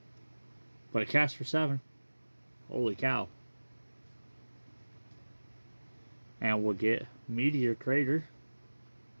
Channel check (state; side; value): inverted; both; correlation -1.00